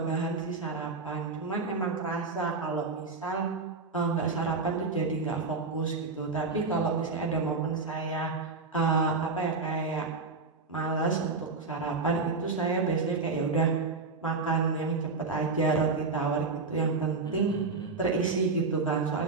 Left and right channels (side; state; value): left; quieter; 4.1 dB